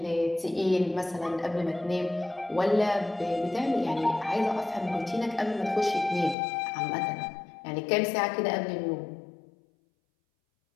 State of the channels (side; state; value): right; drops out; at 6.4 s